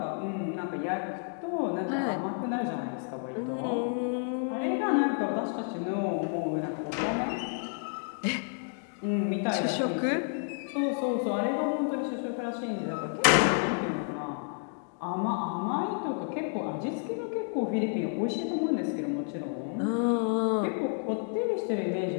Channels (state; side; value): silent; right; 58 dB below the other